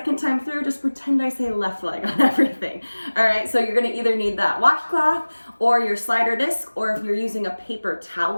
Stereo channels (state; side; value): inverted; both; correlation -1.00